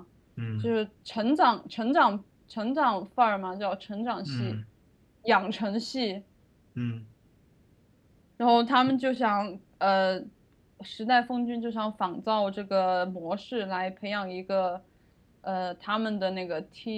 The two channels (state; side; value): identical; both; correlation 1.00